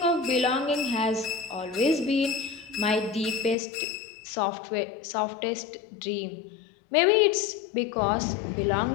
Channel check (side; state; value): right; drops out; at 3.6 s